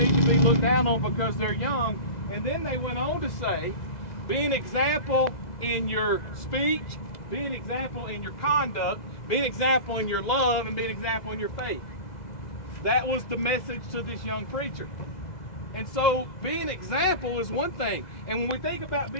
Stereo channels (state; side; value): late; right; 2.0 ms